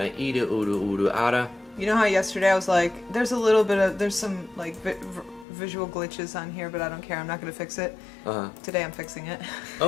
ida udu udu ada. You know how yesterday I was like, there's some like visual glitches on here, but I don't care. I'm not going to fix it. Today I'm fixing it.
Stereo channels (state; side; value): drops out; right; at 5.5 s